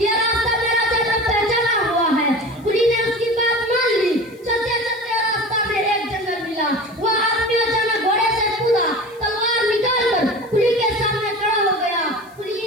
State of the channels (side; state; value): left; noise; hiss, 29 dB below the sound